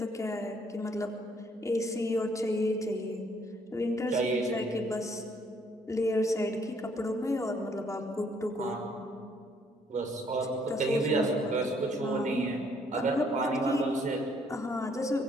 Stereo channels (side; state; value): both; normal; correlation 0.66